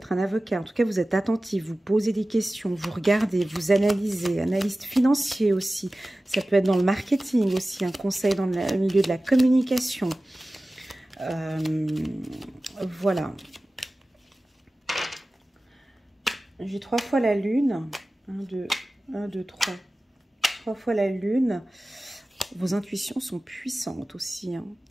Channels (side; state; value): both; normal; correlation 0.96